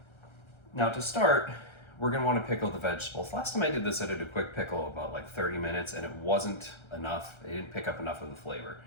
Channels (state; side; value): late; right; 1.3 ms